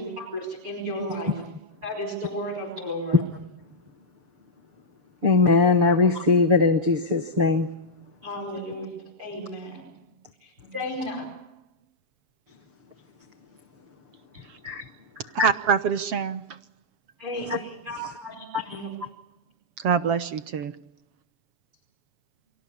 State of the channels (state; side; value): late; left; 7.4 ms